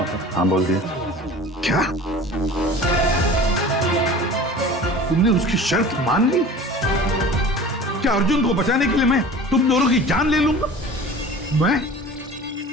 हाँ बोल दिया। क्या तुमने उसकी शर्त मान ली? क्या अर्जुन को बचाने के लिए मैं तुम दोनों की जान ले लूंगा? मैं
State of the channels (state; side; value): normal; both; correlation 0.40